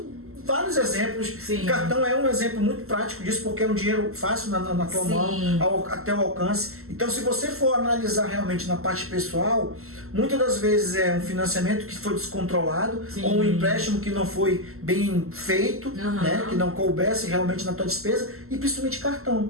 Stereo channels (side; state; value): left; late; 0.63 ms